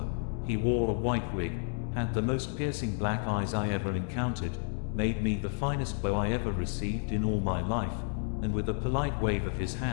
He wore a white wig, had the most piercing black eyes I ever encountered, made me the finest bow I ever received in all my life, and with a polite wave of his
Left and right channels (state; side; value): silent; right; 57 dB below the other